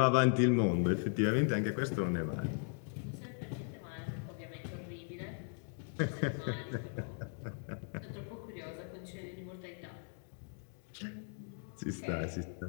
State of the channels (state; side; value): silent; right; 53 dB below the other